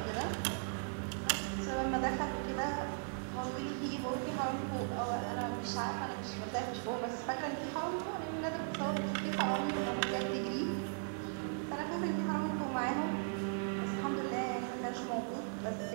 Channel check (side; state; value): left; silent; digital silence